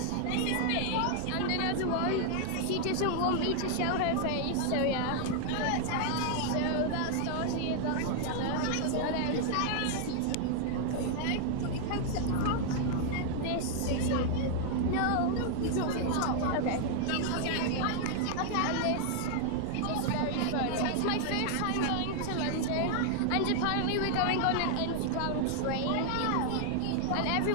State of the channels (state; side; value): different; both; correlation 0.00